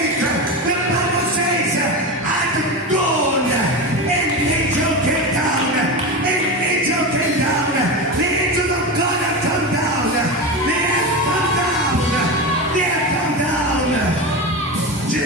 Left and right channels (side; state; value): both; normal; correlation 0.21